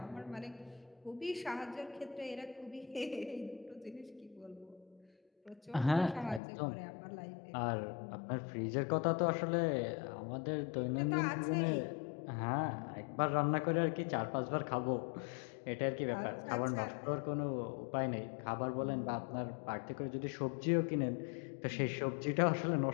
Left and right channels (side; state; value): right; drops out; at 6.4 s